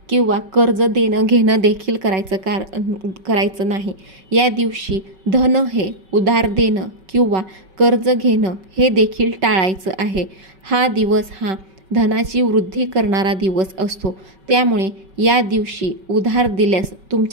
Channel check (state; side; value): late; left; 5.3 ms